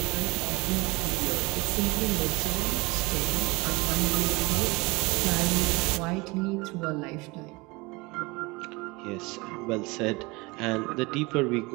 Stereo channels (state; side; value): quieter; left; 24.7 dB